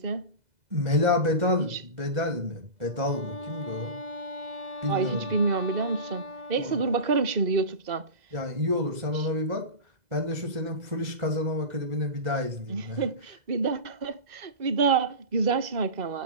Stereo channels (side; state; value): left; late; 2.0 ms